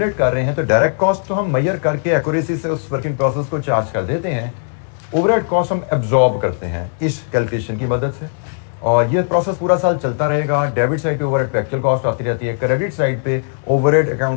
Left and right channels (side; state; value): right; silent; 67 dB below the other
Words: कर रहे हैं तो डायरेक्ट कॉस्ट तो हम मेजर करके एक्यूरेसी से उस वर्किंग प्रोसेस को चार्ज कर देते हैं। ओवरहेड कॉस्ट हम एब्जॉर्ब करते हैं इस कैलकुलेशन की मदद से और ये प्रोसेस पूरा साल चलता रहेगा। डेबिट साइड पे ओवरहेड पे एक्चुअल कॉस्ट आती रहती है, क्रेडिट साइड पे ओवरहेड